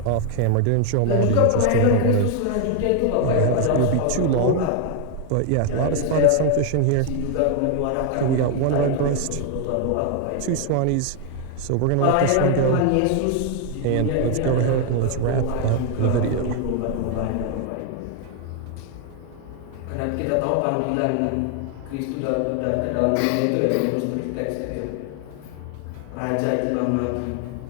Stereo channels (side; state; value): both; different; correlation 0.00